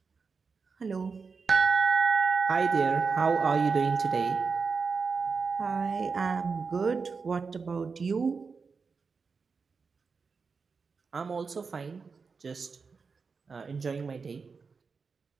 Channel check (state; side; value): quieter; left; 5.0 dB